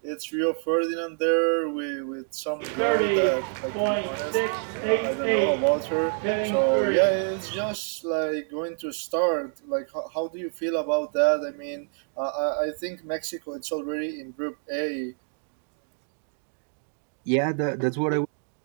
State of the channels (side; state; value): left; silent; 60 dB below the other